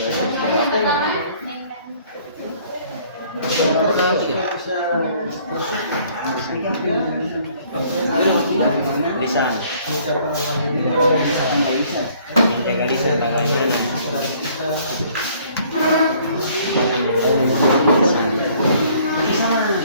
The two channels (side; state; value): both; inverted; correlation -0.59